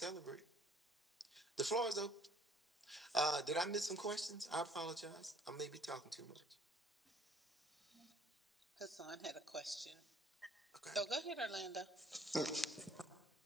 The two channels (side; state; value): both; normal; correlation 0.58